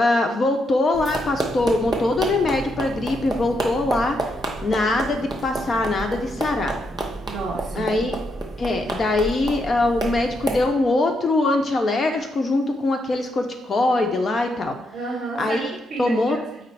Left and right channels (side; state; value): both; normal; correlation 0.80